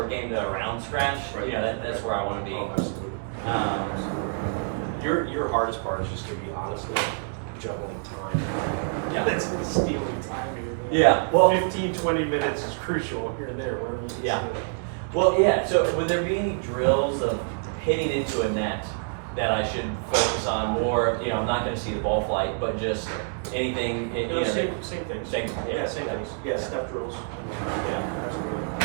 game to around scratch, that's where I want to be. Oh, absolutely. Your hardest part is just gonna be honestly juggling time. Yeah. That's stealing time here. Yeah. Well, 15, 20 minutes is crucial here and there, whatever you can Yeah. say. Well, yeah. So, would there be any drills of hitting into a net that I should focus on more? I'm not going to see the ball flight, but just anything. No, same things. Same- Yeah, same things. Yeah, step drills. Yeah,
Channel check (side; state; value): left; silent; 60 dB below the other